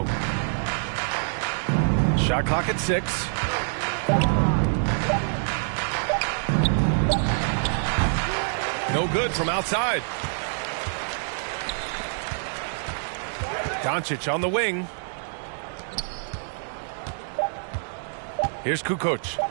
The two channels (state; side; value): silent; left; digital silence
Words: Shot clock at 6. No good from outside. Doncic on the wing. Here's Kukoc.